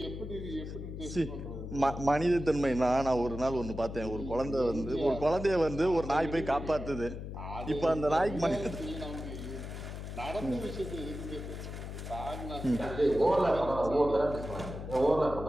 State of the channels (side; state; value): left; noise; hum, 8 dB below the sound